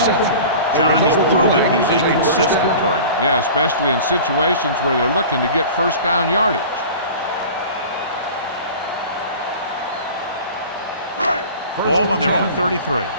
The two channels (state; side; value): inverted; both; correlation -0.39